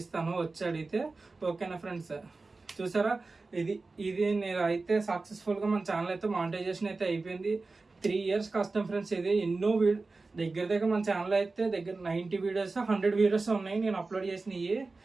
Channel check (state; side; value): quieter; left; 3.7 dB